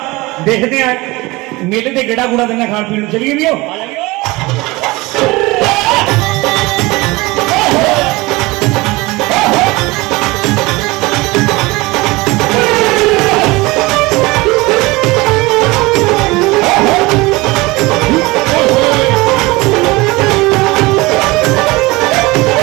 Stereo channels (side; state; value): left; quieter; 22.3 dB